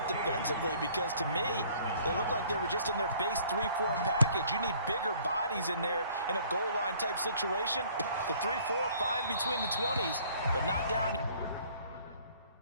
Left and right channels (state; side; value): inverted; both; correlation -0.57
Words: defensively because to me, they look like they were just in their base 3-4 package. You need bigger bodies in there in a goal line type situation. The 3-4, fine between the 20s, but not down here.